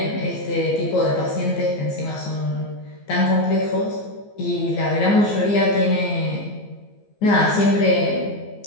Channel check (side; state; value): right; late; 15 ms